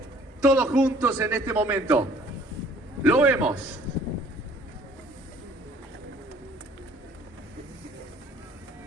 todos juntos en este momento. Lo vemos.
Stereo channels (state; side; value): normal; both; correlation 0.56